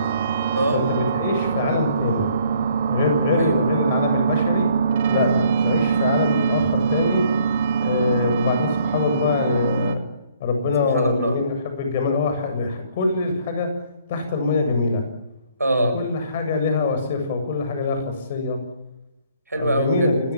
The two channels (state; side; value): inverted; both; correlation -0.63